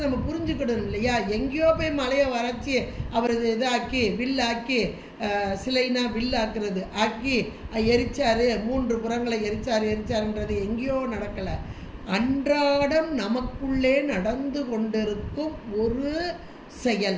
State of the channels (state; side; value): identical; both; correlation 1.00